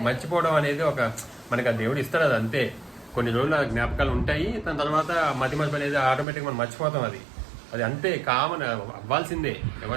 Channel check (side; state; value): left; drops out; at 6.2 s